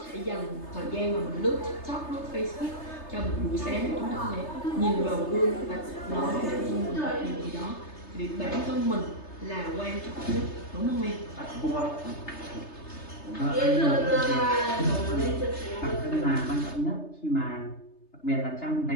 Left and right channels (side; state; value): right; late; 3.3 ms